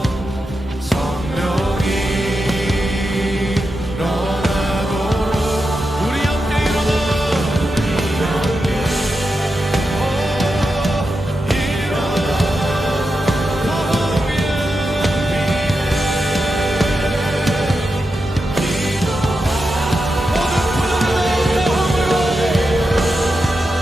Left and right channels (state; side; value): normal; both; correlation 0.88